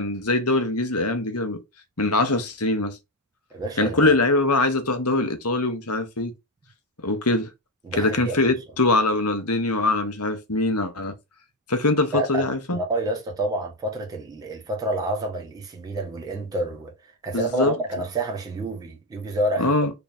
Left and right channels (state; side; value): normal; both; correlation 0.08